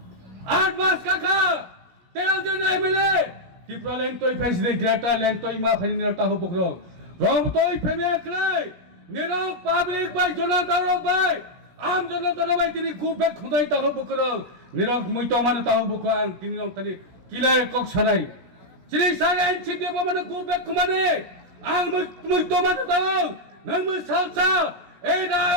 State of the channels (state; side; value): late; left; 16 ms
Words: 8 মাস কাকা 13 জন MLA Tiprasa lentoi faisre grata lentoi ma faini taho bukro rom toi feme aklai nero public bai jona daro bai am jona daro bai tini kubbe khudai taho bukro nero muito mane taho bukro ang tini rong tani kilai kok sanai chini sare enchide bo mane kubbe khumane ang muito mane taho nang mu salsa ei